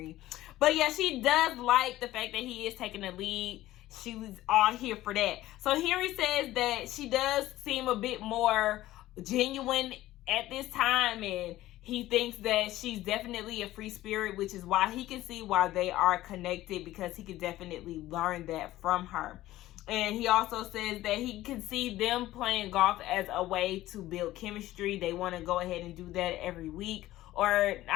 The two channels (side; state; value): right; quieter; 15.7 dB